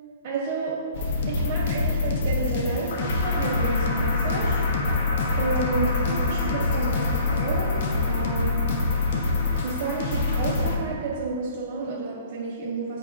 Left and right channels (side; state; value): both; inverted; correlation -0.53